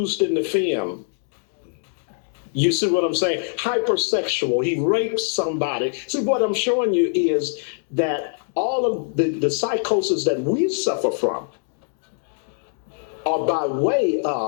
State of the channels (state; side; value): silent; right; digital silence